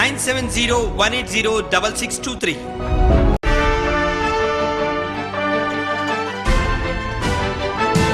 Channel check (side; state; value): both; identical; correlation 1.00